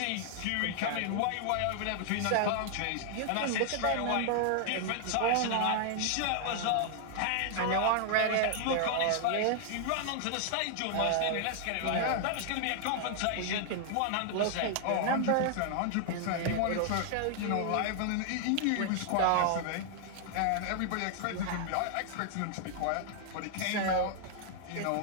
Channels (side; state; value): both; different; correlation 0.00